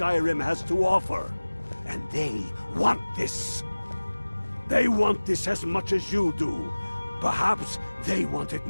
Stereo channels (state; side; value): inverted; both; correlation -1.00